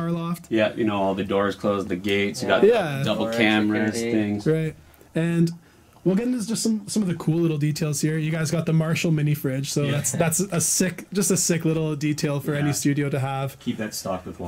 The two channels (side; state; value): both; identical; correlation 1.00